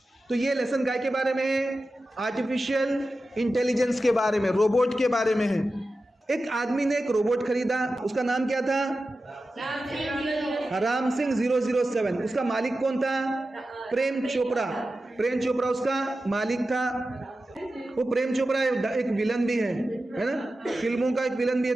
तो ये लेसन गाय के बारे में, आर्टिफिशियल इंटेलिजेंस के बारे में, रोबोट के बारे में है। एक आदमी ने एक रोबोट खरीदा, उसका नाम क्या था, राम सिंह 007। उसका मालिक कौन था, प्रेम चोपड़ा। प्रेम चोपड़ा उसका मालिक था। वो प्रेम चोपड़ा एक विलन भी है ना, फिल्मों का एक विलन भी है।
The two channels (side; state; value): both; normal; correlation 0.93